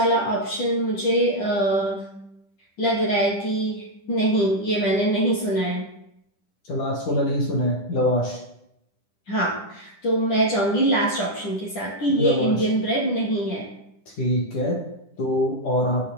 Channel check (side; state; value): right; late; 10 ms